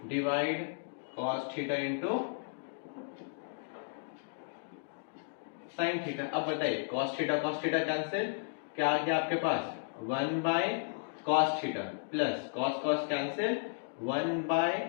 divide cos theta into sine theta. अब बताइए कॉस थीटा कैंसिल, क्या आ गया आपके पास 1 bye cos theta plus cos cos cancel 1 by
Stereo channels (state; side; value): silent; right; digital silence